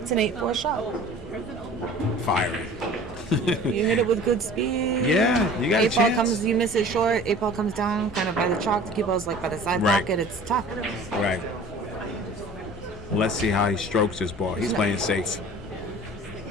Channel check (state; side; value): normal; both; correlation 0.44